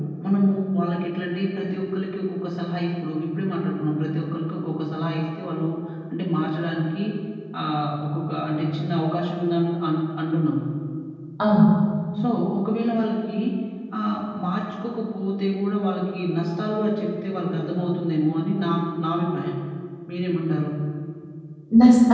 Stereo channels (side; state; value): both; identical; correlation 1.00